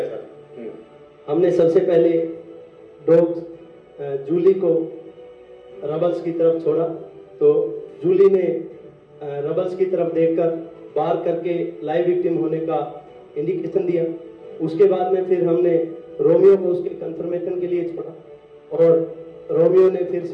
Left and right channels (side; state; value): both; identical; correlation 1.00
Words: सर। हमने सबसे पहले डॉग जूली को रबल्स की तरफ छोड़ा, तो जूली ने रबल्स की तरफ देखकर बार करके लाइव विक्टिम होने का इंडिकेशन दिया। उसके बाद में फिर हमने रोमियो को उसके कंफर्मेशन के लिए छोड़ा और रोमियो ने फिर